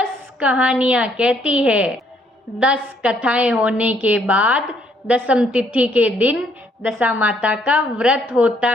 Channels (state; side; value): normal; both; correlation 0.68